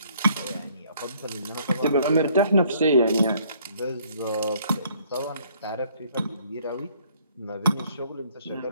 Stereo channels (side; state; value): both; inverted; correlation -0.63